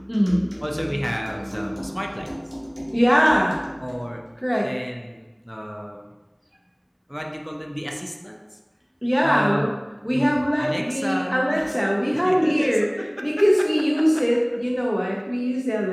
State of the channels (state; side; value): identical; both; correlation 1.00